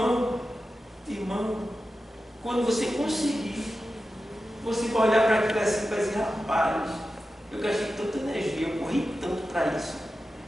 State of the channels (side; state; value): both; normal; correlation 0.92